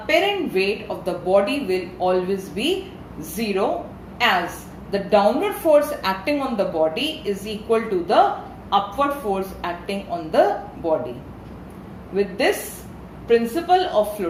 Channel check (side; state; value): both; identical; correlation 1.00